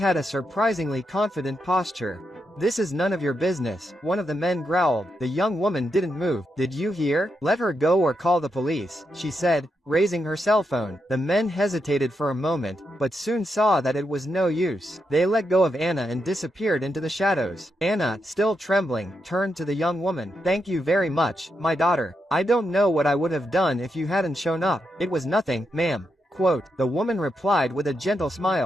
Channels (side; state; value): both; normal; correlation 0.83